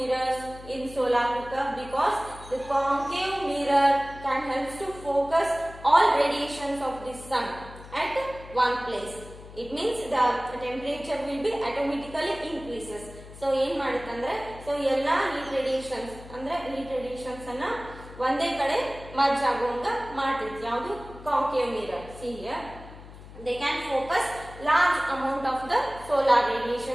in solar cooker? Because the concave mirror can help to focus all radiations of the sun at one place. It means the temperature will be automatically increases. So ಏನು ಮಾಡುತ್ತಂದ್ರೆ so ಎಲ್ಲ heat radiations ಅಂದ್ರೆ heat radiations ಅನ್ನ ಒಂದೇ ಕಡೆ merge ಆಗುವಂಗ ಮಾಡ್ತೈತಿ. ಯಾವುದು? concave mirror. See here, they can focus large amount of the solar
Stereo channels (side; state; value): left; noise; hum, 17 dB below the sound